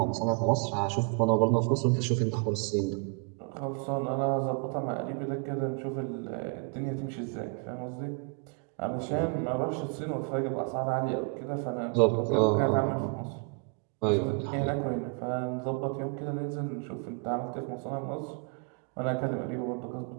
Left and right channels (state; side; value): quieter; left; 36.0 dB